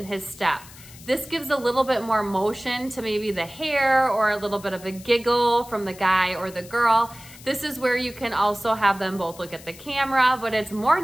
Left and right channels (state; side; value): noise; left; hiss, 19 dB below the sound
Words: his step. This gives a little bit more motion to maybe the hair or a little bit of a giggle from the guy or the girl. This is where you can also have them both look at the camera, but it's more